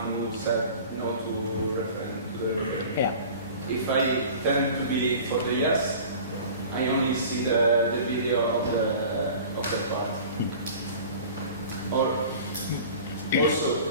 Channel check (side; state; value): both; inverted; correlation -0.41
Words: who said no to the referendum. Yeah. If I tend to be for the yes, I only see the video of the part. Or also